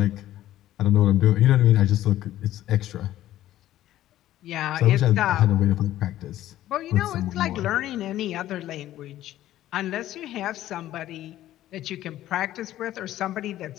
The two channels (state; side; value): quieter; right; 13.7 dB